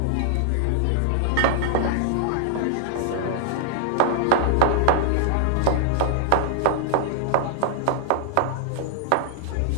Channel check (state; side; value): different; both; correlation -0.01